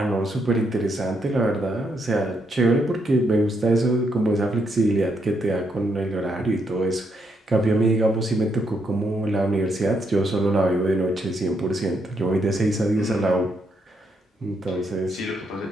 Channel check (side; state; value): both; normal; correlation 0.77